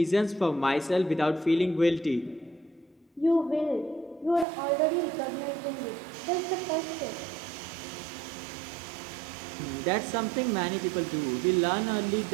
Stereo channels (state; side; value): drops out; left; at 4.5 s